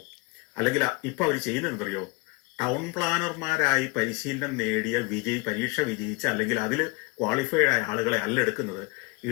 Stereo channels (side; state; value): right; quieter; 27.6 dB